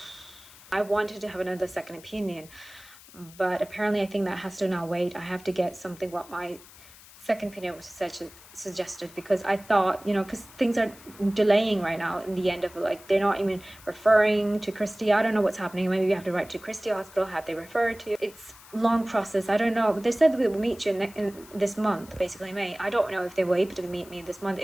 I wanted to have another second opinion, but apparently I think that has to now wait. I have to get something what my second opinion was suggested, because I thought, you know, because things are delaying right now in the end of, like, they're not even referring to Christie. I don't know what's happening. Maybe you have to write to Christie Hospital. Have they referred to? It's long process. I don't know, but they said we will meet you in this month, basically May. I don't know if they will able to meet me this month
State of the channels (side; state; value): left; noise; hiss, 21 dB below the sound